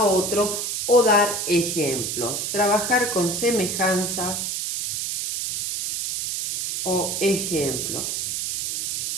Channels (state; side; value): noise; right; hiss, 2 dB below the sound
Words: otro o dar ejemplos. Trabajar con semejanzas o ejemplos